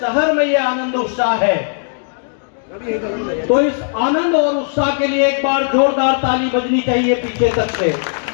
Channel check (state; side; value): silent; right; digital silence